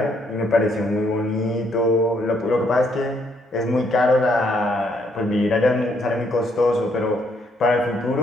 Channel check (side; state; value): both; normal; correlation 0.71